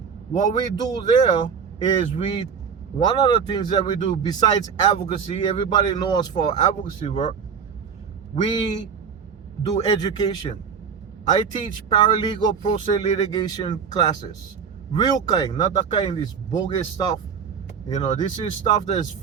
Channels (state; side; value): quieter; left; 6.6 dB